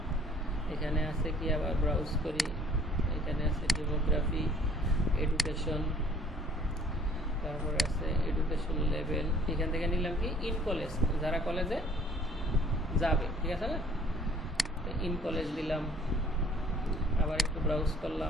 এখানে আছে কি, আবার ব্রাউজ করি, এখানে আছে ডেমোগ্রাফি, এডুকেশন, তারপরে আছে এডুকেশন লেভেল। এখান থেকে নিলাম কি ইন কলেজ, যারা কলেজে যাবে, ঠিক আছে না, ইন কলেজ দিলাম। আবার একটু ব্রাউজ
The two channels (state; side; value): normal; both; correlation 0.55